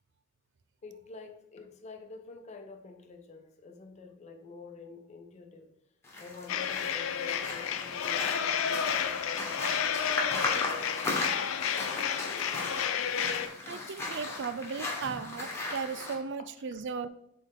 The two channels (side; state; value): right; quieter; 4.6 dB